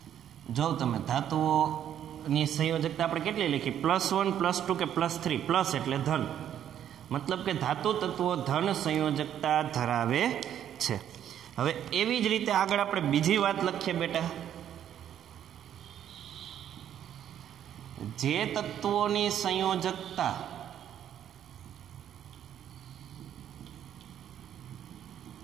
જો તમે ધાતુઓની સંયોજકતા આપણે કેટલી લખી? +1, +2 કે +3. પ્લસ એટલે ધન, મતલબ કે ધાતુ તત્વો ધન સંયોજકતા ધરાવે છે. હવે એવી જ રીતે આગળ આપણે બીજી વાત લખીએ બેટા. જે તત્વોની સંયોજકતા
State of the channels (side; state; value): left; quieter; 10.2 dB